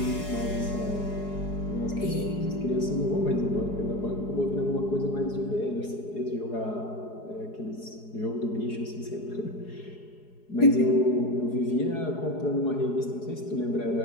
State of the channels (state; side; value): late; right; 4.8 ms